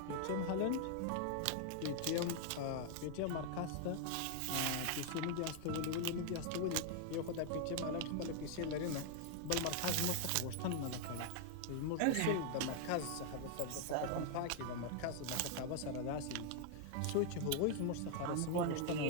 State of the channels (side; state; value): both; different; correlation 0.00